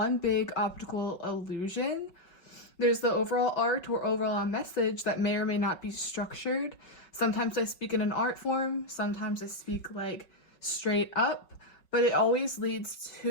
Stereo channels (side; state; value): right; late; 5.4 ms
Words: big optical illusion. There's the overall art or overall message that may or may not be structured. Sometimes I speak in an art form, sometimes I speak like straight up, but it always leads